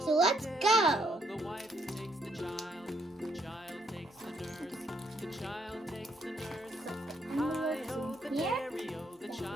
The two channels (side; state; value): both; normal; correlation 0.73